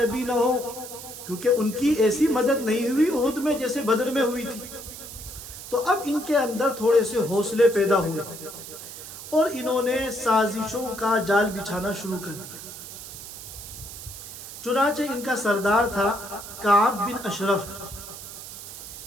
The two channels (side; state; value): right; noise; hiss, 12 dB below the sound